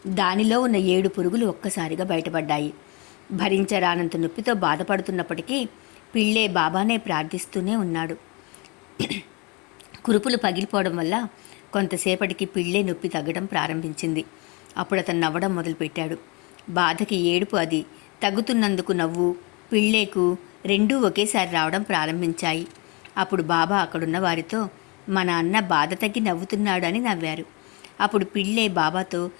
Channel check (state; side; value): quieter; right; 28.8 dB